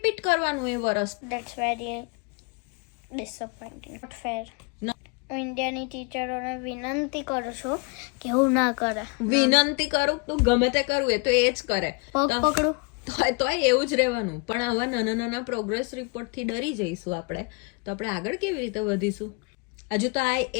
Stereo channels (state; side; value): quieter; right; 30.0 dB